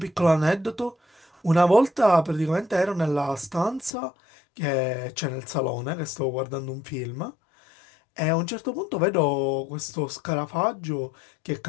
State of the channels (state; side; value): drops out; right; at 4.0 s